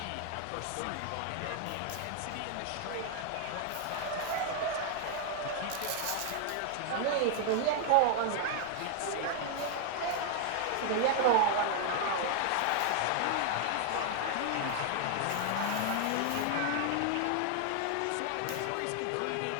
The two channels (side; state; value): both; different; correlation 0.00